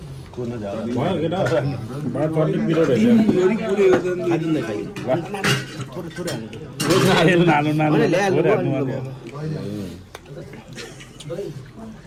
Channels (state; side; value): identical; both; correlation 1.00